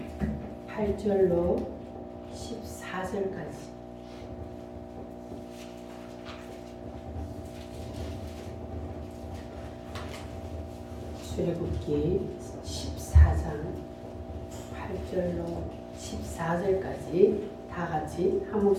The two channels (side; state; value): both; identical; correlation 1.00